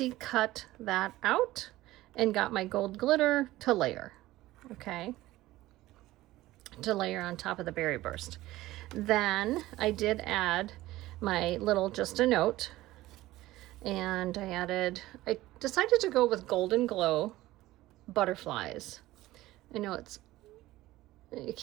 cut that out and got my gold glitter to layer, okay? To layer on top of the Berry Burst. Then I did add my little Just a Note, and I decided to go with Golden Glow butterflies. I know you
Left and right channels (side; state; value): left; quieter; 16.9 dB